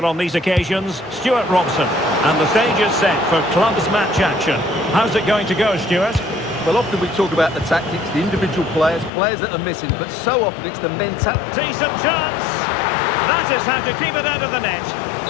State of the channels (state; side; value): drops out; right; at 9.1 s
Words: on these occasions, Stuart Robson. And the stage is set for clubs match action. How's it going to go, Stuart? Well, often we talk about the tactics, the individual players that are missing, but so often it's the mentality. Decent chance. That is how to keep it out of the net.